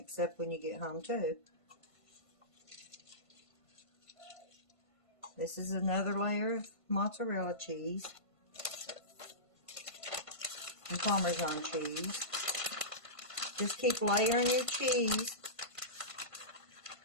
up when you get home too. This is another layer of mozzarella cheese and Parmesan cheese. Just keep layering your cheese.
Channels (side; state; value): right; late; 1.5 ms